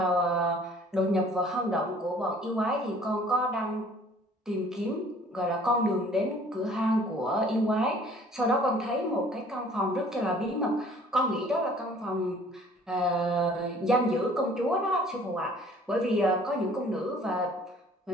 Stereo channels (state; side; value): normal; both; correlation 0.54